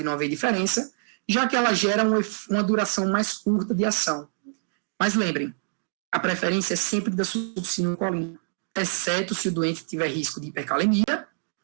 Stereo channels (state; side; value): silent; left; digital silence